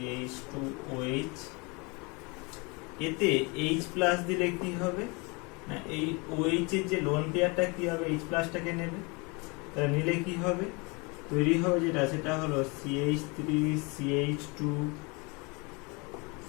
এতে H প্লাস দিলে কি হবে না, এই OH এর যে লোন পেয়ারটা কি হবে, H প্লাসটাকে নেবে, তাহলে নিলে কি হবে, তৈরি হবে যেটা সেটা হলো CH3 CH2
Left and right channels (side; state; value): right; quieter; 29.0 dB